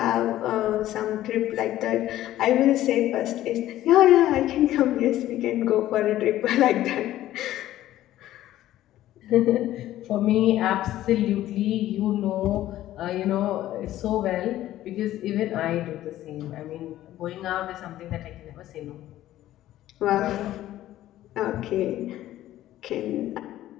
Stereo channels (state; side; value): quieter; right; 13.9 dB